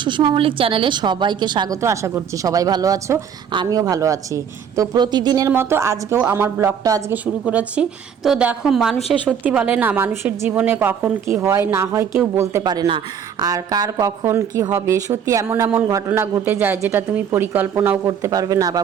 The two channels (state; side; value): quieter; left; 7.8 dB